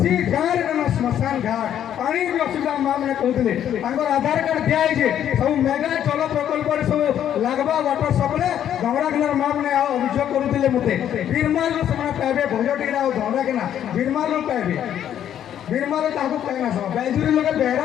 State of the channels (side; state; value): right; quieter; 10.2 dB